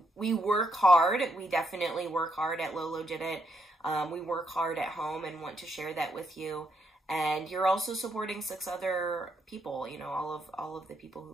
We work hard. We definitely work hard at Lola Did It. We work hard at home and want to share that with you. And you're also supporting 6 other people, you know, all of the people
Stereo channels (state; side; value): normal; both; correlation 0.77